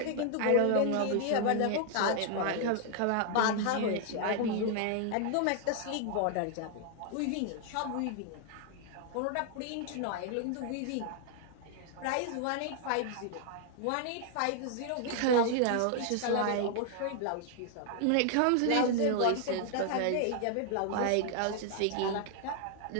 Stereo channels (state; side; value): different; both; correlation 0.00